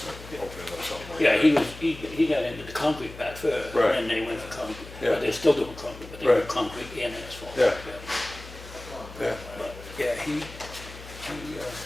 opening up something like Yeah, that. he got into the concrete part first, Right. and then they went for concrete. Yeah. But they're still doing concrete, but they do Right. concrete and asphalt. Yeah. Yeah. But, yeah, he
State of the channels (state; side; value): noise; left; hum, 15 dB below the sound